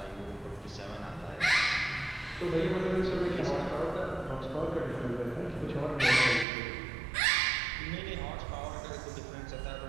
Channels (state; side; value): drops out; left; at 6.5 s